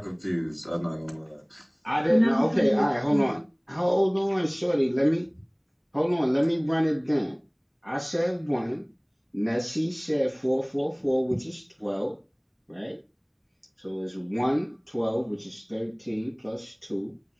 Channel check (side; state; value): both; identical; correlation 1.00